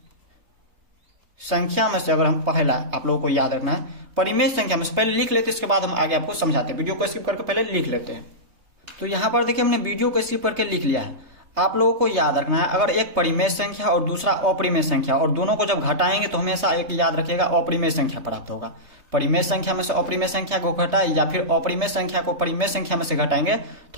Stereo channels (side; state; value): left; late; 3.2 ms